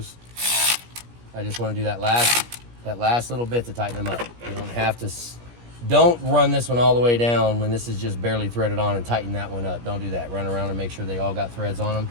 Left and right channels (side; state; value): left; late; 17 ms